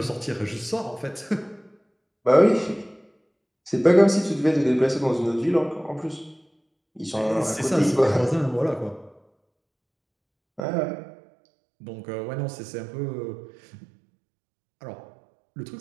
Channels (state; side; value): drops out; left; at 10.7 s